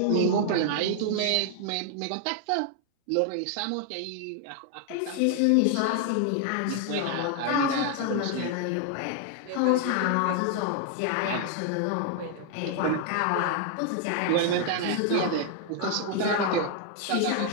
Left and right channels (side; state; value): both; different; correlation 0.00